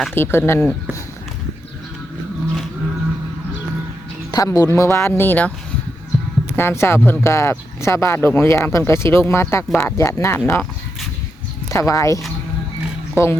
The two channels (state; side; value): normal; both; correlation 0.84